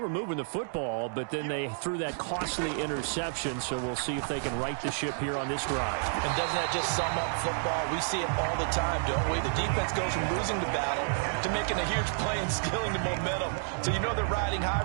moving the football, but then they threw that costly interception, so we'll see if they can right the ship here on this drive. And doesn't that just sum up football? We see it all the time, don't we? The defense goes from losing the battle to making a huge play and stealing the momentum. So you know they're riding high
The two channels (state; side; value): silent; left; digital silence